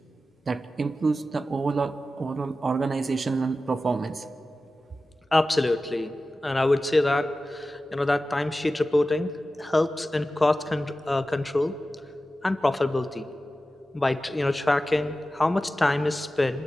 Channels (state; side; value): normal; both; correlation 0.94